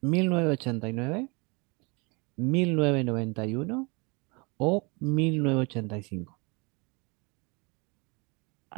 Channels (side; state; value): left; quieter; 29.4 dB